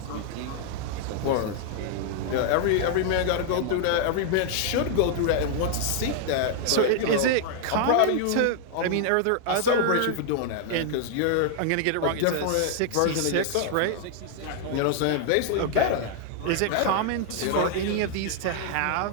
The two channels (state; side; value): different; both; correlation 0.00